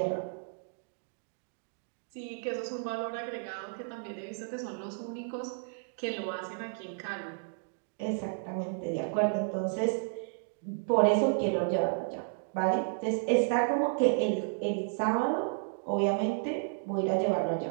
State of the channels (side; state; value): left; silent; digital silence